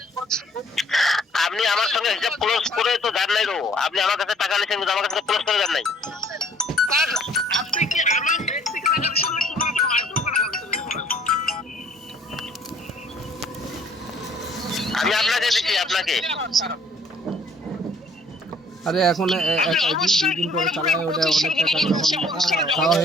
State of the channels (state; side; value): normal; both; correlation 0.59